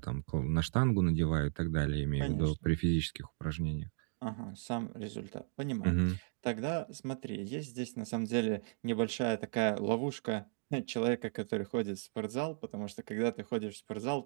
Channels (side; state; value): left; silent; digital silence